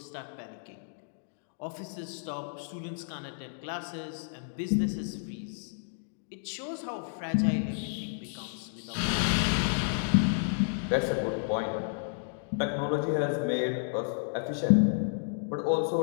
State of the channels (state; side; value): silent; right; digital silence